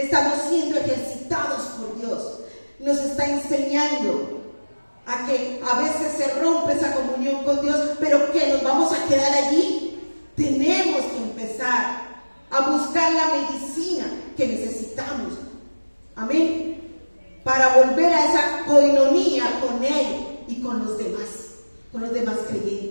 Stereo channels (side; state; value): both; inverted; correlation -1.00